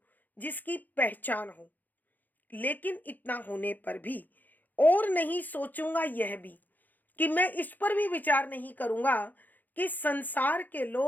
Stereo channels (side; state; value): right; late; 0.085 ms